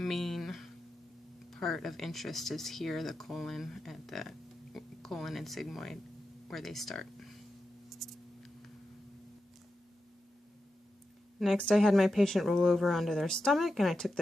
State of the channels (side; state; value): both; normal; correlation 0.90